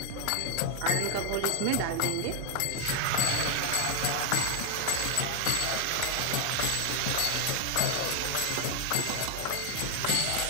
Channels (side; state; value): both; different; correlation 0.00